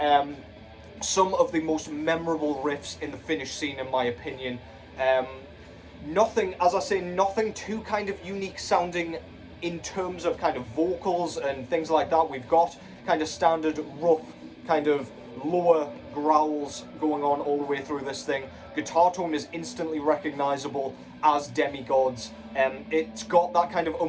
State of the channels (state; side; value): identical; both; correlation 1.00